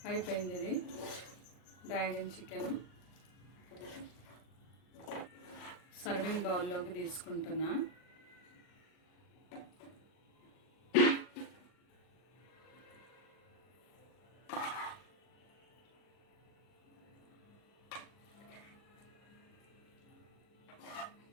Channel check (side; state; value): right; late; 39 ms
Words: అయిపోయింది ఇది డ్రాగన్ చికెన్. సర్వింగ్ బౌల్లోకి తీసుకుంటున్నా.